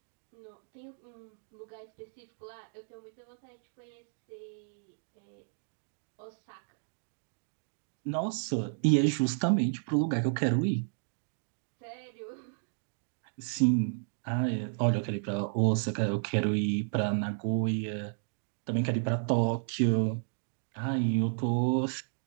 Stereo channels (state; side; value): silent; left; digital silence